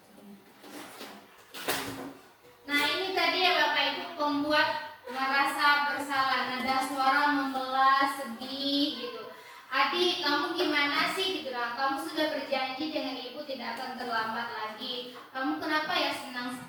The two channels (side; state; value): both; identical; correlation 1.00